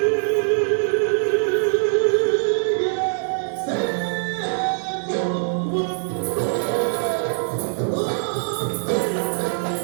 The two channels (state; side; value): silent; left; digital silence